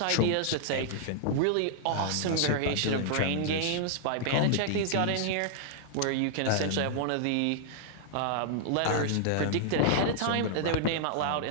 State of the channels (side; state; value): both; different; correlation -0.01